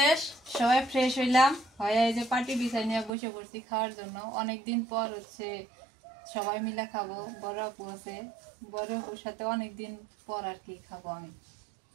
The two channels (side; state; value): left; drops out; at 3.1 s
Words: সবাই ফ্রেশ হইলাম, হয়ে এই যে পাটি বিছাই নিয়ে বসে পড়ছি খাওয়ার জন্য। অনেকদিন পর হচ্ছে সবাই মিলে খাবো, বড় আপু আছে, বড় আপুর সাথে অনেকদিন পর আর কি খাবো। আমি